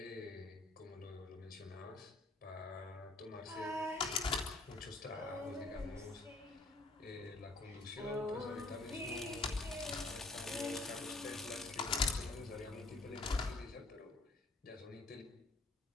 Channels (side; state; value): right; quieter; 3.0 dB